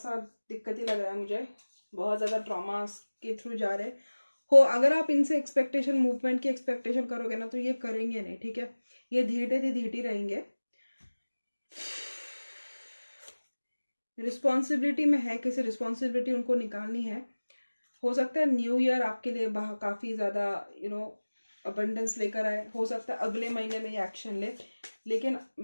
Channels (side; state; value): both; inverted; correlation -1.00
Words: दिक्कत ही लग रहा है मुझे, बहुत ज़्यादा ट्रॉमा के थ्रू जा रहे हो। अगर आप इनसे एक्सपेक्टेशन, मूवमेंट की एक्सपेक्टेशन करोगे ना तो ये करेंगे नहीं, ठीक है। ये धीरे रहेंगे। रिस्पॉन्सिबिलिटी में है, किसी रिस्पॉन्सिबिलिटी उनको निकालनी है। हो सकता है न्यू ईयर आपके लिए काफ़ी ज़्यादा अबंडेंस लेकर आए, हो सकता है अगले महीने में ये एक्शन ले। लेकिन